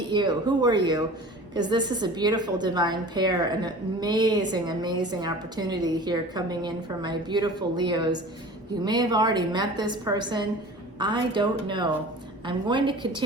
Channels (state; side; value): normal; both; correlation 0.40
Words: you. Who are you? Because this is a beautiful divine pair, an amazing, amazing opportunity here coming in for my beautiful Leos. You may have already met this person. I don't know. I'm going to